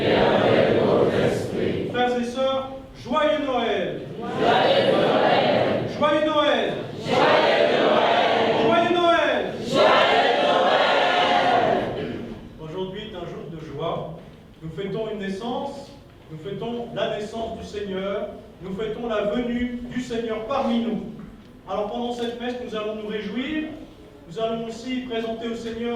avec votre esprit. Frères et sœurs, joyeux Noël! Joyeux Noël! Joyeux Noël! Joyeux Noël! Joyeux Noël! Joyeux Noël! Aujourd'hui est un jour de joie. Nous fêtons une naissance, nous fêtons la naissance du Seigneur, nous fêtons la venue du Seigneur parmi nous. Alors pendant cette messe, nous allons nous réjouir, nous allons aussi présenter au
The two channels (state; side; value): identical; both; correlation 1.00